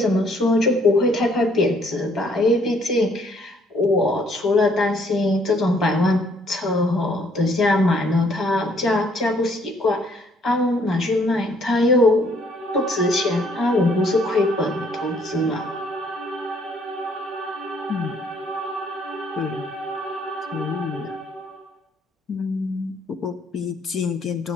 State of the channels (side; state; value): both; normal; correlation 0.65